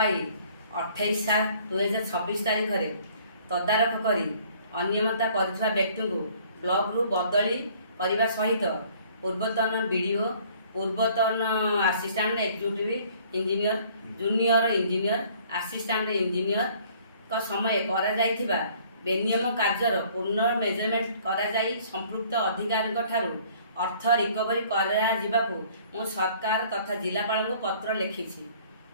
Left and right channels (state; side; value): inverted; both; correlation -0.57